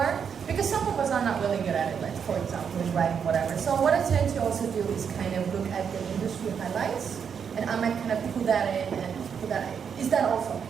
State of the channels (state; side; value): quieter; left; 7.1 dB